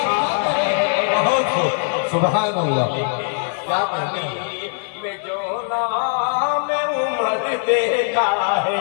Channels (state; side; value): silent; right; digital silence